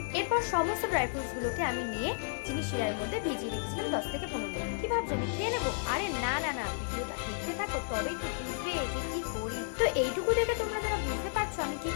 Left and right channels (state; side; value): silent; right; 56 dB below the other